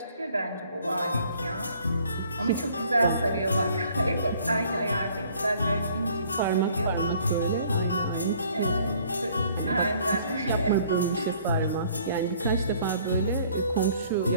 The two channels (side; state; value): both; inverted; correlation -0.58